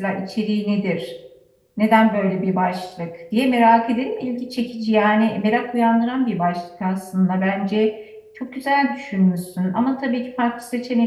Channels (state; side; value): identical; both; correlation 1.00